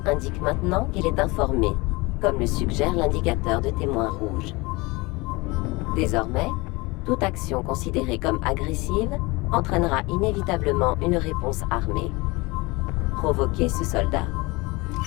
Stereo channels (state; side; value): quieter; right; 24.1 dB